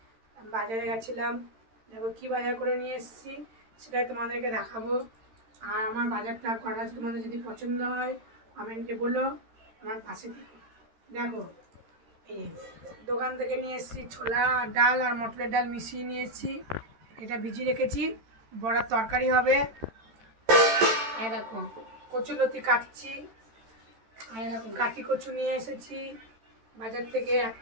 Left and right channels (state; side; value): late; left; 13 ms